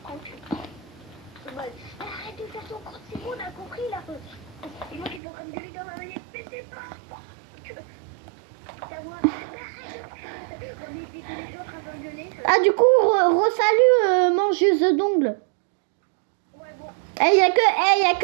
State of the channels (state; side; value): drops out; left; at 5.2 s